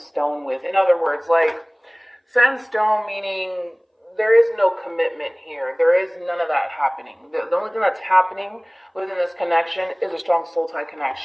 with. In other words, like, set in stone meaning there is no commitment here. There is none of that happening. The only thing that's happening within this connection is a strong soul tie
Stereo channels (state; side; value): identical; both; correlation 1.00